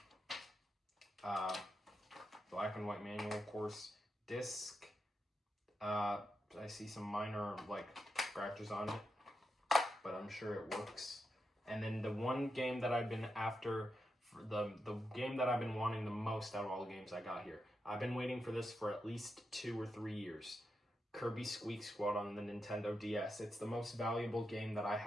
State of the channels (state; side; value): normal; both; correlation 0.86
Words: Black and white manual, of course. Disc. I see some minor like scratches on it, but I'm sure it works. And then the one game that I've been after, the game that I've been wanting the most out of all the games I got here. I've been waiting for this for at least 2 or 3 years. Kirby Squeak Squad on the Nintendo DS. It's the most valuable game that I